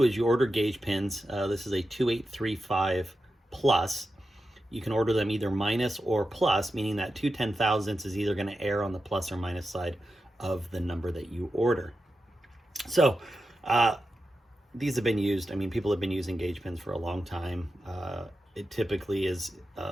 is you order gauge pins. This is a 2835 plus. You can order them either minus or plus, meaning that 2 10,000ths is either going to err on the plus or minus side of the number that you order. So these have been used. People have been using gauge pins for a long time. It typically is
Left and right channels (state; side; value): normal; both; correlation 0.90